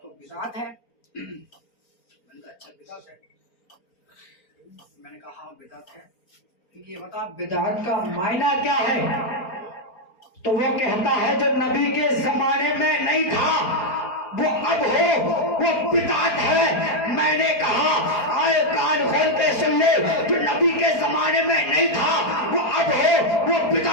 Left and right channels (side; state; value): right; late; 4.4 ms